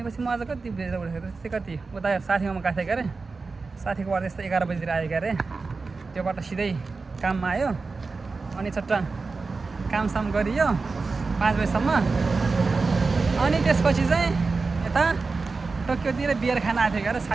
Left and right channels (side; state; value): left; quieter; 4.1 dB